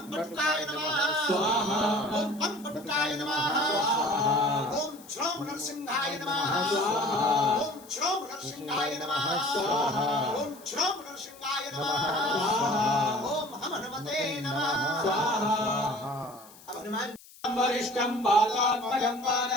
पटुकाय नमः स्वाहा ओम पम पटुकाय नमः ओम श्रोम नरसिंहाय नमः ओम श्रोम नरसिंहाय नमः ओम श्रोम नरसिंहाय नमः ओम हनुमते नमः अब हनुमान वरिष्ठं बालात्मजं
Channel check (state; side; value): noise; left; hiss, 22 dB below the sound